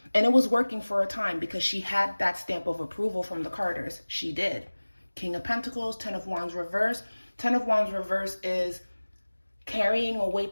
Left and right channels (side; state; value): both; inverted; correlation -1.00